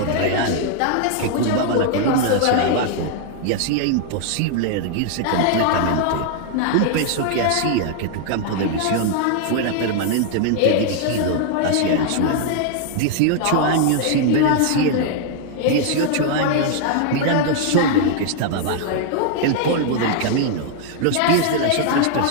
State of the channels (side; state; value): both; different; correlation 0.00